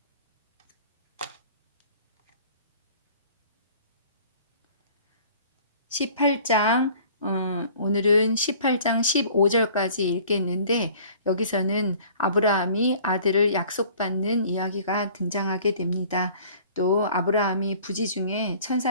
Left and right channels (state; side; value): inverted; both; correlation -0.50